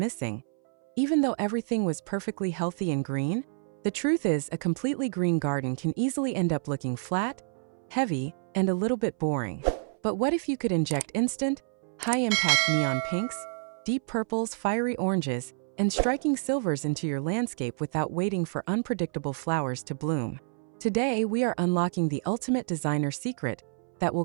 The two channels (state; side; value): silent; left; 59 dB below the other